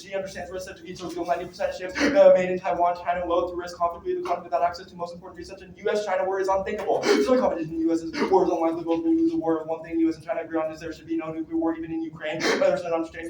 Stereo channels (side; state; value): both; identical; correlation 1.00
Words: understands risk to be so 90% ships made in Taiwan. China will to risk conflict with the conflict without access to most important research. And U.S.-China war is unthinkable. So the competition in the U.S. war is unlikely. Both will lose the war. One thing U.S. and China agree on is there should be no nuclear war even in Ukraine. Others don't understand